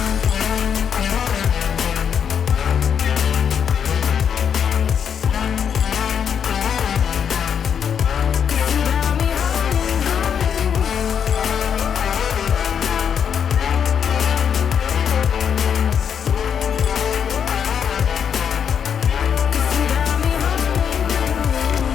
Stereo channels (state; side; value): quieter; right; 7.8 dB